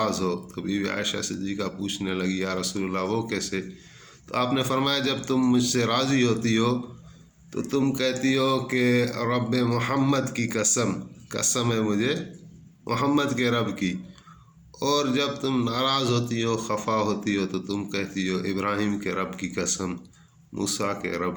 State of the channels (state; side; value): identical; both; correlation 1.00